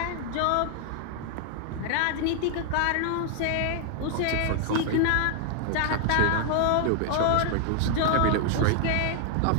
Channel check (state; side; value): different; both; correlation 0.00